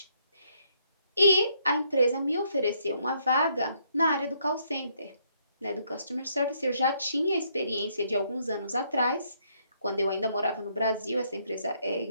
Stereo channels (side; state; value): both; inverted; correlation -0.71